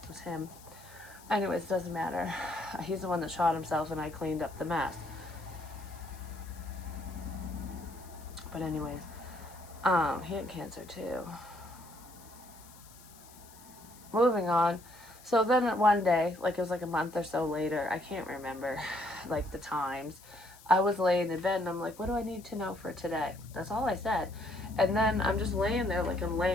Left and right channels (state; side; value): noise; left; hiss, 22 dB below the sound